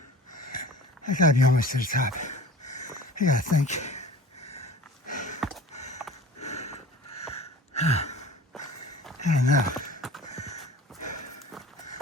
I gotta be almost to the top. I gotta think. I don't know.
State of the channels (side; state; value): both; normal; correlation 0.42